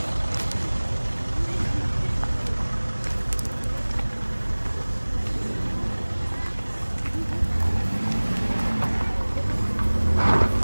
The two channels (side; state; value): both; inverted; correlation -1.00